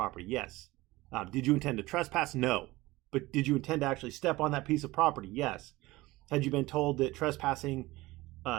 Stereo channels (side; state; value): left; quieter; 19.6 dB